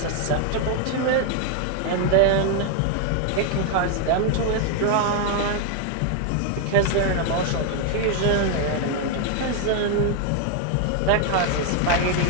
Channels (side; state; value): both; different; correlation 0.01